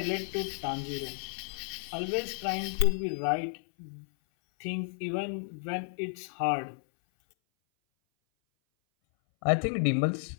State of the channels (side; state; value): right; silent; 56 dB below the other